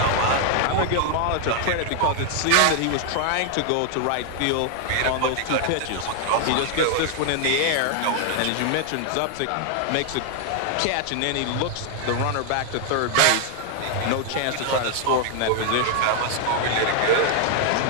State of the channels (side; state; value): both; different; correlation 0.00